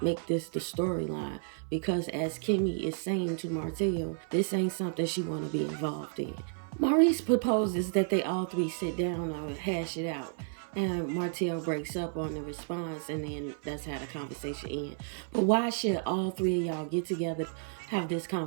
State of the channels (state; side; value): silent; left; 57 dB below the other